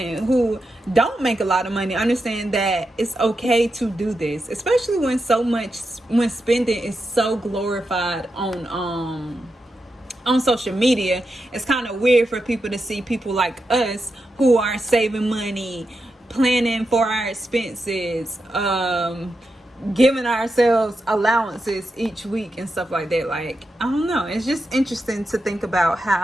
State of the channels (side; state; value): both; normal; correlation 0.88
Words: who don't make a lot of money understand that it's okay to do this, especially when spending is so glorified on social media. It's kind of weird for people to see people like us who are saving money, planning for our expenses, giving ourselves allowances each week and stuff like that. Like, I don't know, it's just interesting to think about